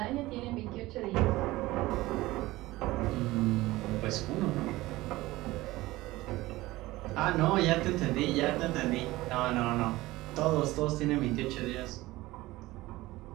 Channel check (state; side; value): quieter; left; 18.7 dB